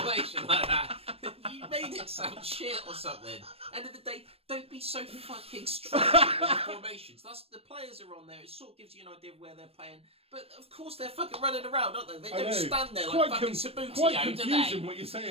like that. You made it sound shit or something. End of the day, don't be so fucking stupid with the formations. The players are on there. It sort of gives you an idea of where they're playing. But of course they're fucking running around, don't they? They don't stand there like fucking Sabutio, quite do they? confusing what you're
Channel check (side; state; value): left; late; 0.28 ms